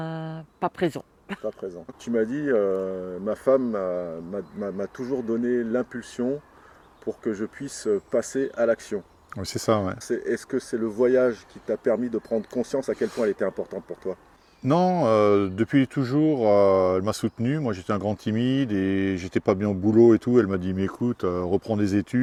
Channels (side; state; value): both; identical; correlation 1.00